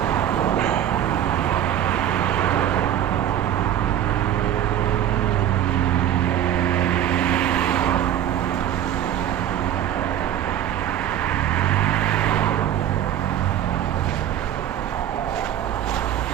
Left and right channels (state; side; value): quieter; left; 11.0 dB